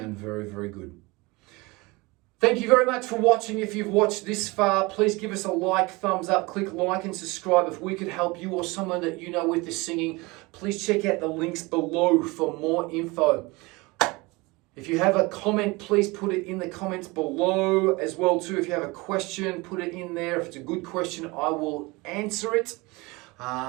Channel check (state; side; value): quieter; left; 24.2 dB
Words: very, very good. Thank you very much for watching. If you've watched this far, please give us a like, thumbs up, click like and subscribe. If we could help you or someone that you know with the singing, please check out the links below for more info. If you have a comment, please put it in the comments below as well too. If you have a question, put it in there. If it's a good question, I will answer it.